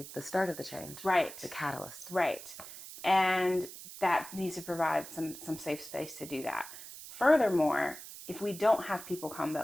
the start of the change. Right. The catalyst. Right. And that needs to provide some safe space to do that. Furthermore, if we don't have people come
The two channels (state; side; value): noise; right; hiss, 13 dB below the sound